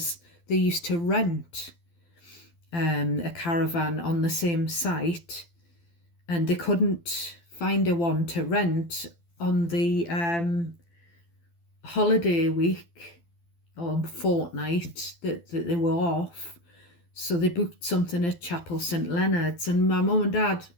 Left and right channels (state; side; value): late; right; 12 ms